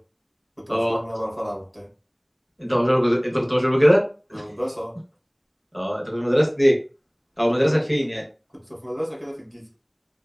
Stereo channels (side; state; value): both; identical; correlation 1.00